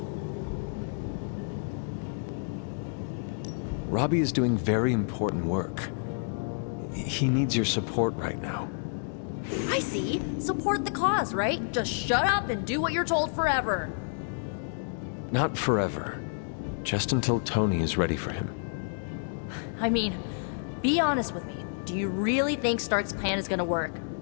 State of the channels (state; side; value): silent; right; digital silence